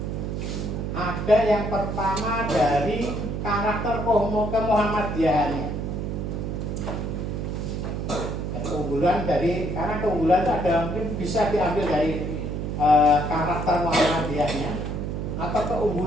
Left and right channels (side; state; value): right; noise; hum, 3 dB below the sound